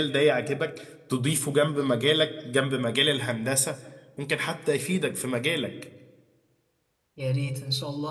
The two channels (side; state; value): both; identical; correlation 1.00